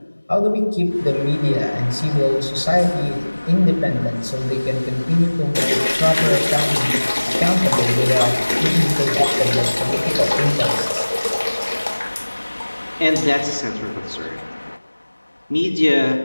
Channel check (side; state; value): both; inverted; correlation -1.00